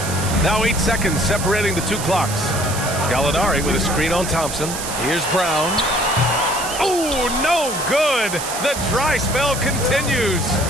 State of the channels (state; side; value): noise; right; hiss, 7 dB below the sound